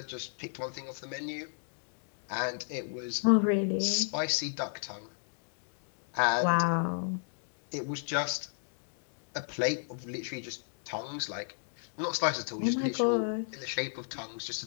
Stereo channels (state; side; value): silent; right; digital silence